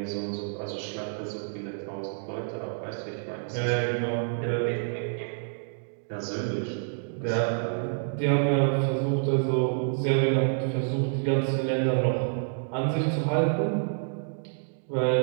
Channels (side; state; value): left; silent; digital silence